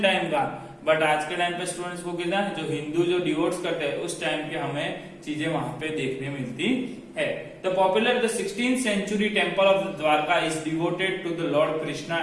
टाइम का, बट आज के टाइम पे स्टूडेंट्स को कितना जो हिंदू जो डिवोट्स करते हैं उस टाइम के हमें चीजें वहां पे देखने मिलती है। The popular the 16th century temple of Dwarka is devoted to the Lord Krishna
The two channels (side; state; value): both; identical; correlation 1.00